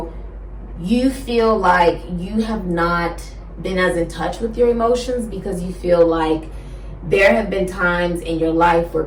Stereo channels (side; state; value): both; identical; correlation 1.00